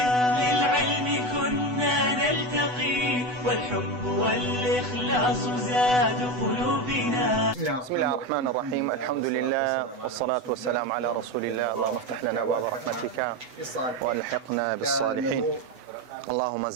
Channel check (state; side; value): late; left; 8.1 ms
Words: للعلم كنا نلتقي، والحب والإخلاص زاد قلوبنا. بسم الله الرحمن الرحيم، الحمد لله والصلاة والسلام على رسول الله. اللهم افتح لنا أبواب رحمتك والحقنا بالصالحين. اللهم